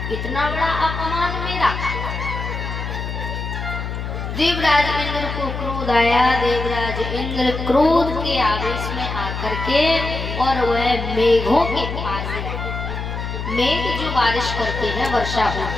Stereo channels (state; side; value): noise; left; hum, 5 dB below the sound